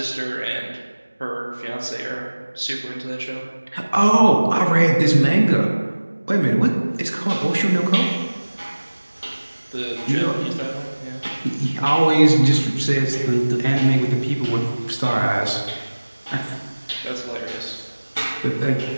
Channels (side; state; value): both; inverted; correlation -1.00